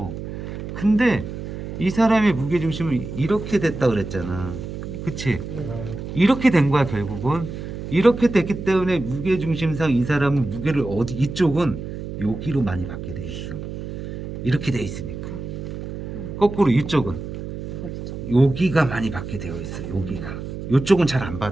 근데 이 사람의 무게중심은 이렇게 됐다 그랬잖아. 그치? 이렇게 된 거야 결국은. 이렇게 됐기 때문에 무게중심상 이 사람은 무게를 이쪽은 여기로 많이 받게 돼 있어. 이렇게 돼 있으니까. 거꾸로 이쪽은 여기가 많이 받게 되어 있어. 여기가. 이쪽은 잘 안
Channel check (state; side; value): noise; right; hum, 8 dB below the sound